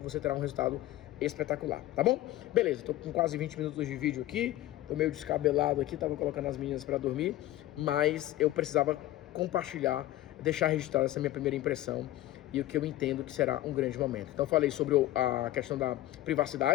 você terá um resultado espetacular, tá bom? Beleza, tô com quase 20 minutos de vídeo aqui, tô meio descabelado aqui, tava colocando as meninas para dormir, mas eu precisava compartilhar, deixar registrada essa minha primeira impressão e o que eu entendo que será um grande momento. Então falei sobre a questão da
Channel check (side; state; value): right; quieter; 15.4 dB